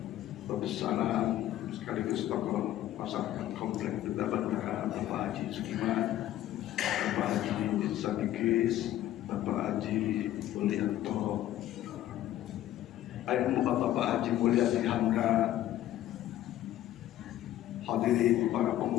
Babussalam sekaligus tokoh masyarakat komplek Duta Bandara, Bapak Haji Sukiman, Bapak Haji Sadikis, Bapak Haji Mulyanto, Bapak Haji Mulyadi Hamka, hadirin para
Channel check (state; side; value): quieter; right; 13.4 dB